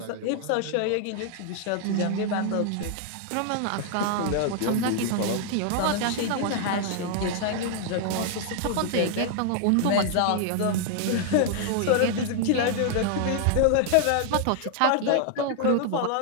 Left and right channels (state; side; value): different; both; correlation 0.00